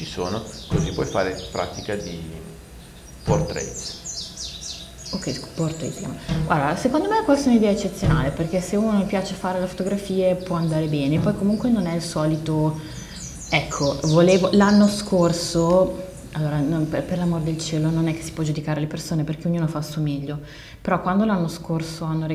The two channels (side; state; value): both; identical; correlation 1.00